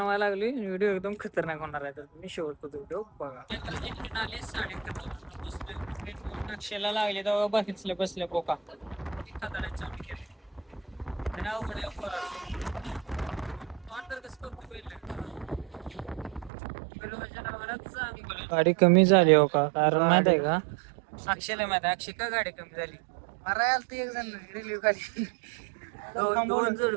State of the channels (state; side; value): drops out; left; at 16.5 s